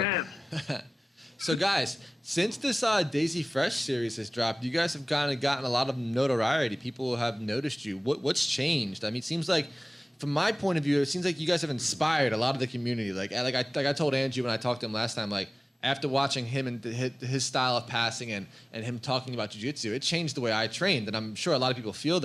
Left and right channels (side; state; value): both; normal; correlation 0.98